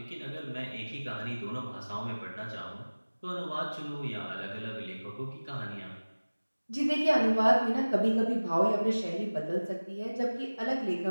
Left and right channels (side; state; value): both; inverted; correlation -1.00